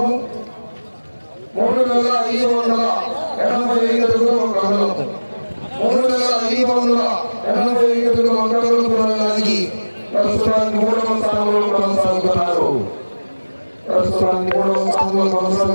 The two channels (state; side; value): inverted; both; correlation -1.00